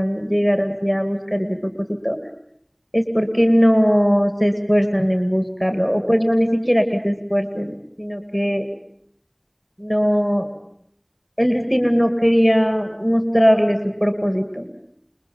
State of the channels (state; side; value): identical; both; correlation 1.00